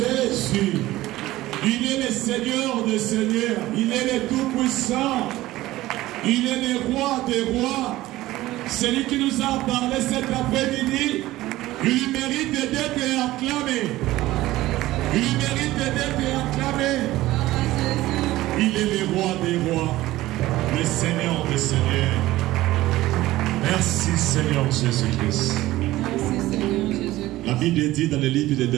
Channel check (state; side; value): quieter; left; 16.7 dB